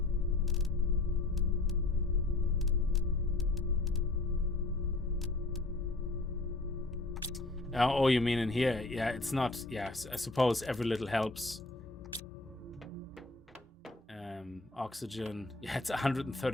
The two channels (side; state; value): right; quieter; 3.0 dB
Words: Oh, you mean in here? Yeah, it's not. Yeah, I suppose every little helps. Oxygen. Yeah, it's